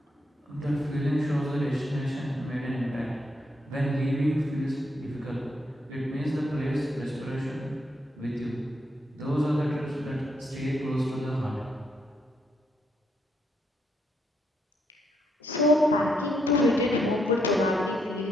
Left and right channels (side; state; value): both; normal; correlation 0.77